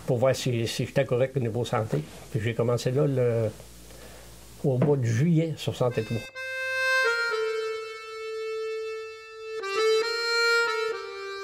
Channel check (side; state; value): both; identical; correlation 1.00